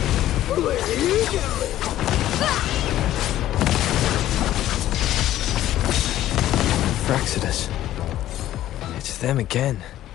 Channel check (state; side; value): quieter; right; 13.4 dB